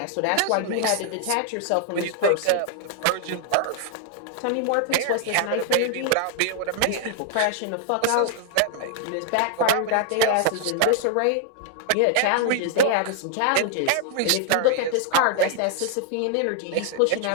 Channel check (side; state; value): both; different; correlation 0.00